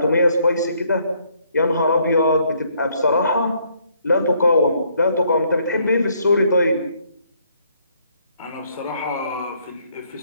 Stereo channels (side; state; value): both; inverted; correlation -0.69